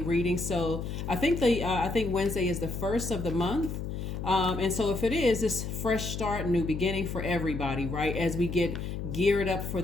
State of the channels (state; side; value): noise; left; hum, 5 dB below the sound